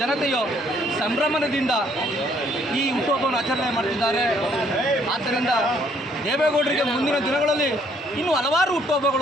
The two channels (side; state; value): both; normal; correlation 0.65